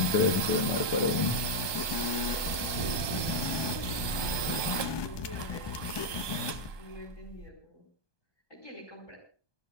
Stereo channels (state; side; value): late; right; 1.2 ms